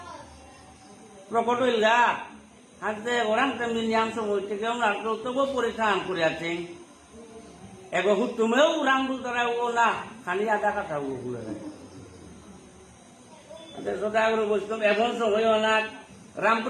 প্রকট হইল গা হাতে ওরাম তেমনি নিয়াম সময় থেকে ওনার তবু পরীক্ষা আন করে আছেন এগো তুমেও রাম বল দ্বারা ও না খালি আধা কথা বলে সদাগর বৈষ্ণব এমন সময় অনাক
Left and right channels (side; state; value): both; identical; correlation 1.00